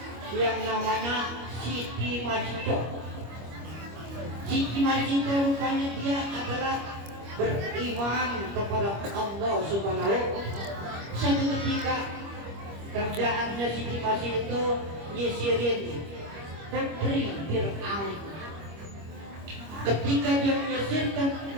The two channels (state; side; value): late; left; 25 ms